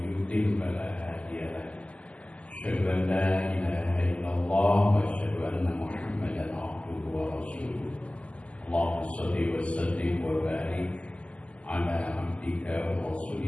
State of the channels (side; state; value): right; late; 0.062 ms